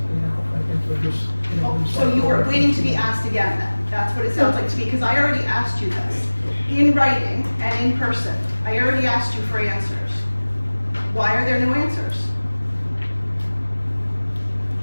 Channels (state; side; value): inverted; both; correlation -1.00